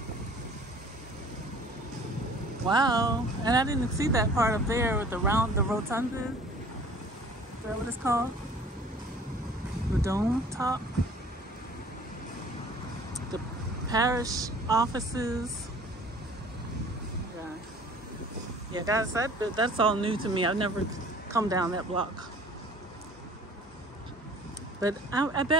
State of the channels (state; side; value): normal; both; correlation 0.50